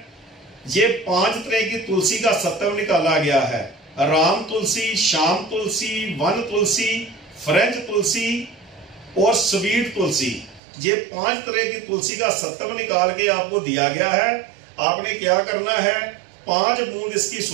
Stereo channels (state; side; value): drops out; left; at 10.6 s